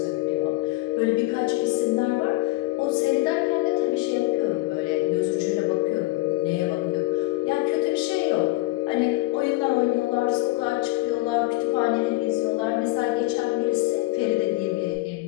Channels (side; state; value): right; quieter; 19.4 dB